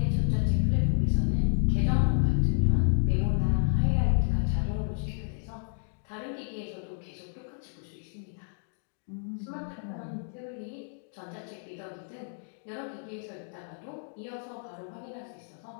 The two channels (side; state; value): right; silent; digital silence